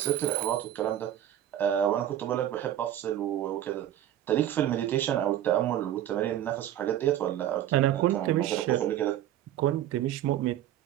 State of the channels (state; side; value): quieter; left; 11.9 dB